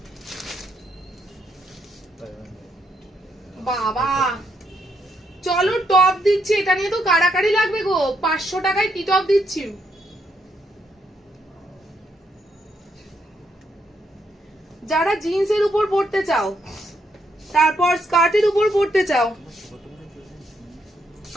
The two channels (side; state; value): both; normal; correlation 0.77